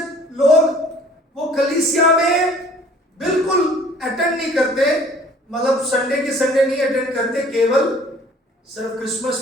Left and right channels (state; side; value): normal; both; correlation 0.52